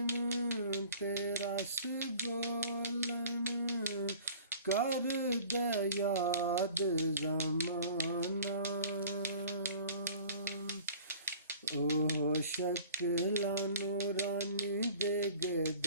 ते रस बोलन कर दे याद जमाना। ओ शक्ल नूरानी दे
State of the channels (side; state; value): both; inverted; correlation -0.47